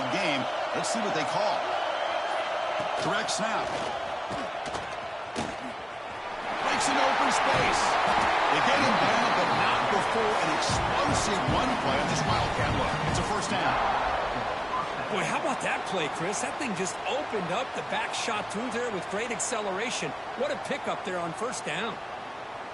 game. Let's see what they call. Direct snap. Breaks an open space. They get him down, but not before an explosive run play on this Wildcat look. It's a first down. Boy, how about that play, Chris? That thing just opened up. The back shot through there with great acceleration. What a pickup there on first down.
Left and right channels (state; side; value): identical; both; correlation 1.00